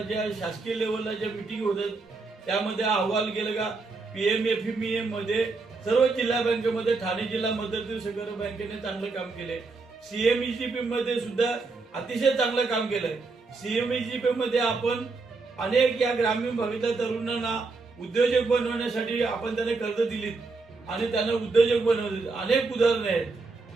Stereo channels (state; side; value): quieter; left; 3.9 dB